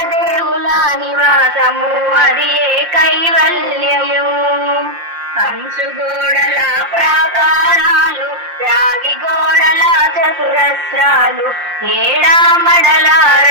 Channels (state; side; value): late; left; 5.7 ms